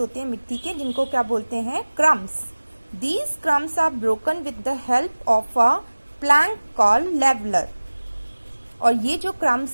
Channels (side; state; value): both; inverted; correlation -1.00